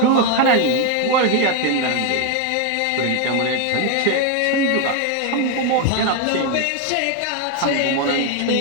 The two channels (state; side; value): different; both; correlation 0.01